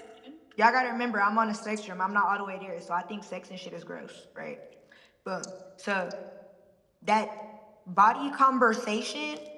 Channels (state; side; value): identical; both; correlation 1.00